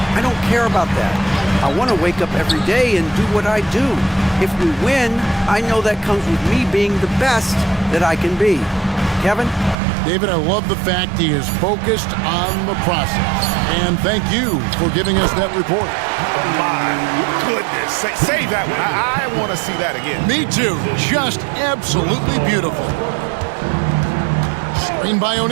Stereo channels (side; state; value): left; drops out; at 9.8 s